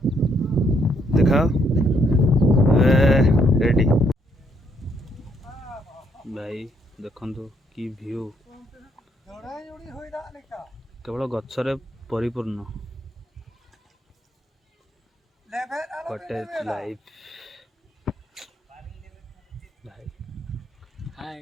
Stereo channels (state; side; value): normal; both; correlation 0.72